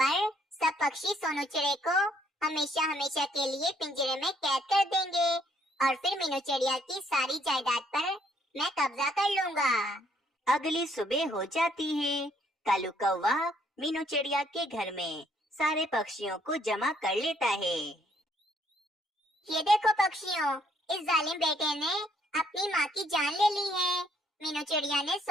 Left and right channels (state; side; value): normal; both; correlation 0.67